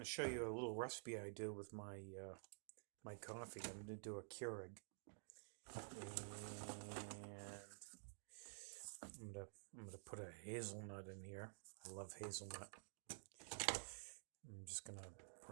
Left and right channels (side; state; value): left; silent; digital silence